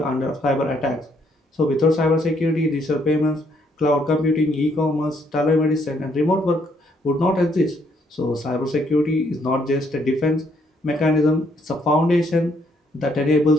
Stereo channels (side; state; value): both; normal; correlation 0.70